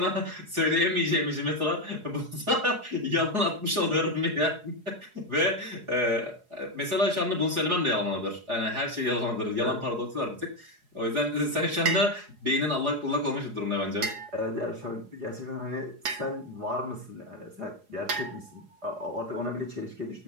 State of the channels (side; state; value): left; late; 4.8 ms